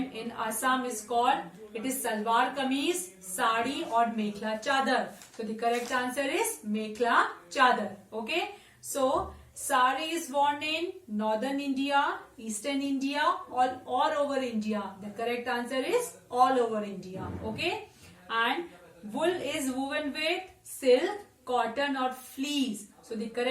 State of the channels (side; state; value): both; identical; correlation 1.00